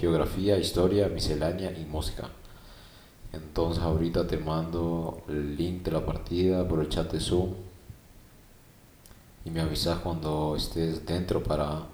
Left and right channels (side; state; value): both; identical; correlation 1.00